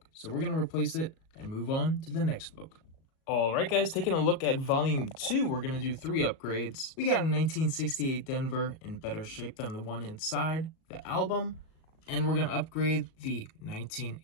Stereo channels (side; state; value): right; late; 37 ms